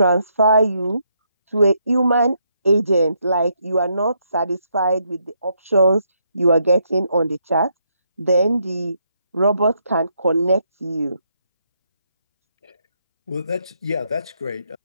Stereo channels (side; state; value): both; inverted; correlation -0.76